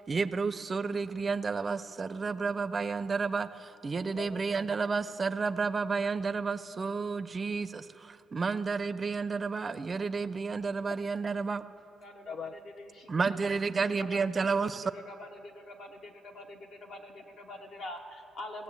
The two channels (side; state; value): left; quieter; 4.2 dB